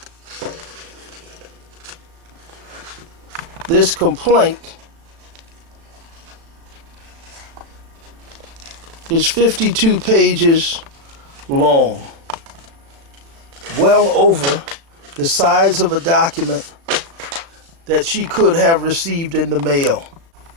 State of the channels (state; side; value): late; left; 36 ms